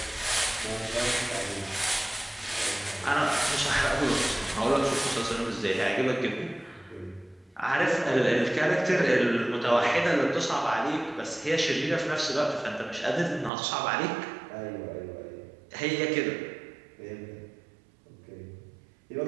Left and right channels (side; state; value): left; drops out; at 13.5 s